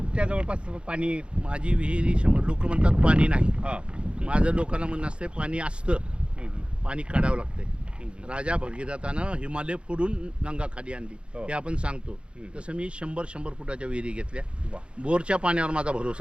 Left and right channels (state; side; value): late; left; 0.056 ms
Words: जवळपास पाणी. माझी विहीर 100. लोक म्हणतात पाणी नाही. हां. माझं लोकांना म्हणणं असते पाणी असतं, पाणी काढावं लागतंय. राजा भगीरथानं हिमालय फोडून गंगा खाली आणली हे आपण सांगतो. तसं मी 100 फुटाच्या विहिरी घेतल्या. बोरच्या पाण्यावर माझा